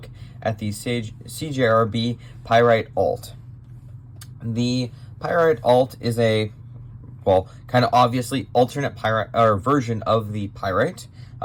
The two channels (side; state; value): both; identical; correlation 1.00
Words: at the CJRB Pyrite-Alt. The Pyrite-Alt is a, kind of obviously alternate Pyrite or version of the Pyrite,